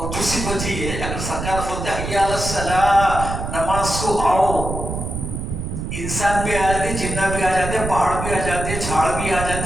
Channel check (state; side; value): noise; right; rumble, 5 dB below the sound